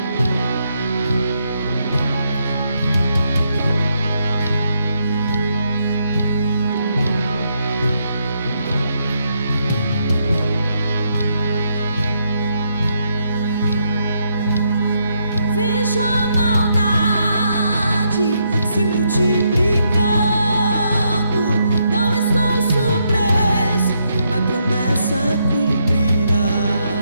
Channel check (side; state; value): both; inverted; correlation -0.78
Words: Vejo a maldade se multiplicando. Não estou surpreso